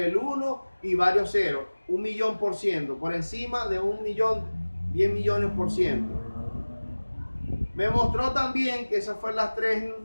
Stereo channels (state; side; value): inverted; both; correlation -1.00